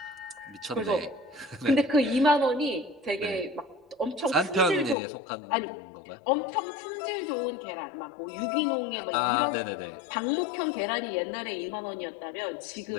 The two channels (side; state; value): right; drops out; at 5.0 s